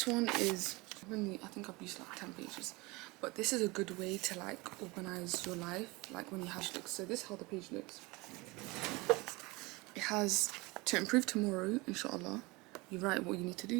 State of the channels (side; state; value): left; quieter; 24.1 dB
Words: one is only, I think I've used like 10 pages. But this is a good way to like organize your life, like when you have looks. So this is how the page looks. It has to improve tomorrow, inshallah. You write what you need to